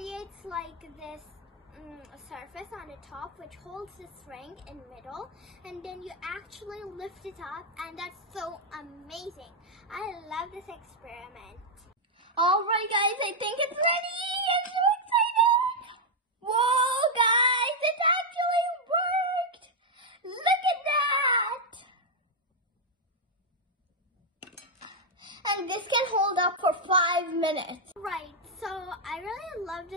like this surface on the top which holds the string in middle, and then you actually lift it up, and that's so amazing. I love this experiment. Alright guys, I think it's ready. I'm so excited. Whoa guys, it actually worked. Look at that. And this can hold up for 5 minutes. Right, so I really love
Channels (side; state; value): both; normal; correlation -0.02